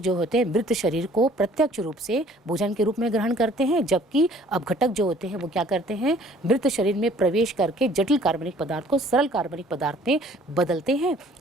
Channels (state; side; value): normal; both; correlation 0.55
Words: होते हैं मृत शरीर को प्रत्यक्ष रूप से भोजन के रूप में ग्रहण करते हैं, जबकि अपघटक जो होते हैं वो क्या करते हैं? मृत शरीर में प्रवेश करके जटिल कार्बनिक पदार्थ को सरल कार्बनिक पदार्थ में बदलते हैं